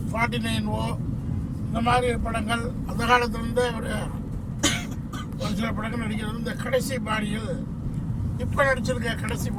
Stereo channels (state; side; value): identical; both; correlation 1.00